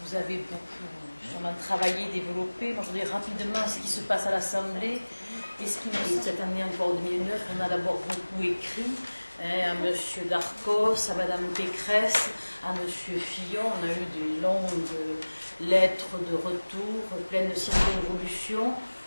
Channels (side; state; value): both; inverted; correlation -1.00